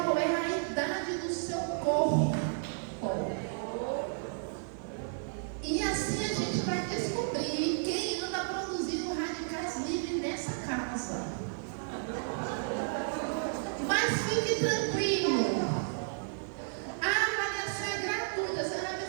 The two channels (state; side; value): silent; left; digital silence